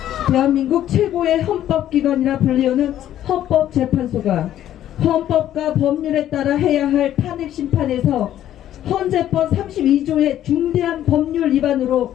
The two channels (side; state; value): right; quieter; 11.8 dB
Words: 대한민국 최고의 헌법기관이라 불리우는 헌법재판소가 헌법과 법률에 따라 해야 할 탄핵심판에서 헌재법 32조의 중대한 법률